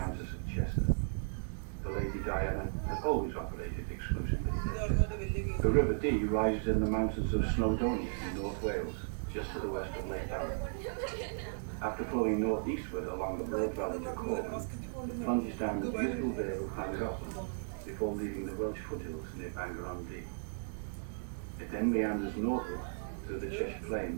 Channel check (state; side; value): silent; left; digital silence